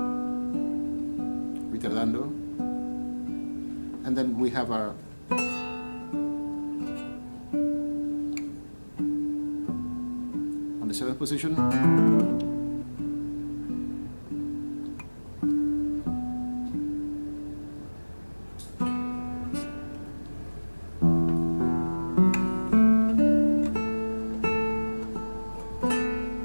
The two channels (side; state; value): both; inverted; correlation -1.00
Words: retardando. And then we have our on the 7th position.